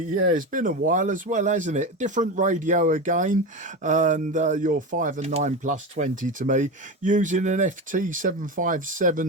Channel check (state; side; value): normal; both; correlation 0.21